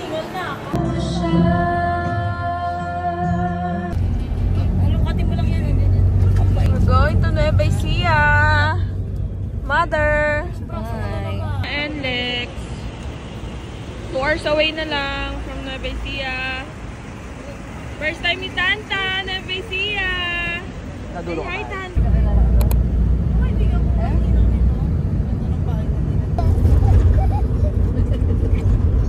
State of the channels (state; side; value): identical; both; correlation 1.00